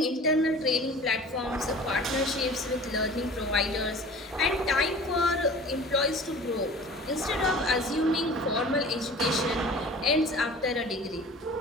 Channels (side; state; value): both; normal; correlation 0.42